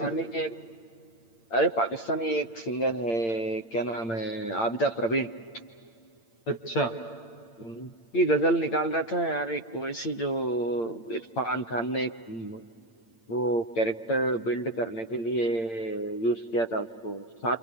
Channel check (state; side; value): late; right; 8.8 ms